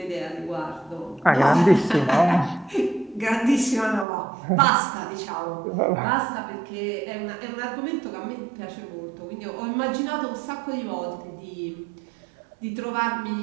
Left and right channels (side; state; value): left; drops out; at 4.0 s